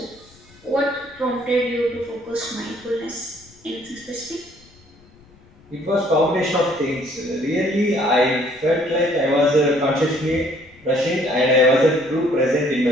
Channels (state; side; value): noise; left; rumble, 27 dB below the sound